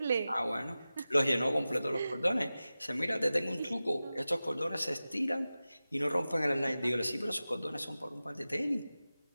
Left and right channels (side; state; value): both; inverted; correlation -0.95